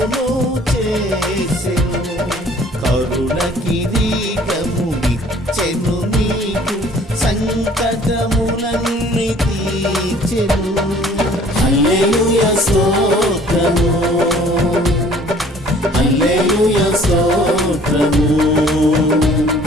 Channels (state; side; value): normal; both; correlation 0.54